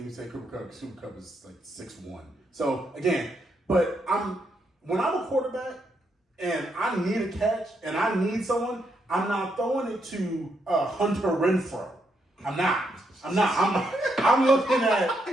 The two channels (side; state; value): both; normal; correlation 0.78